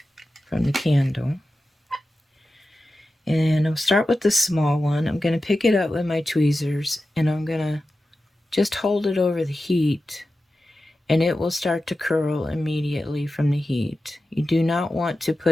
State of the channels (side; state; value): both; normal; correlation 0.93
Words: from the candle. And I'll start with the small one. I'm going to pick it up with my tweezers and I'm going to just hold it over the heat, and it will start to curl immediately from the heat. You do not want to